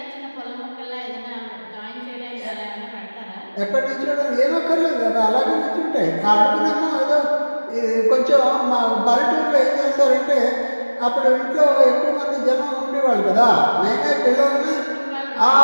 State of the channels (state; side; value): inverted; both; correlation -1.00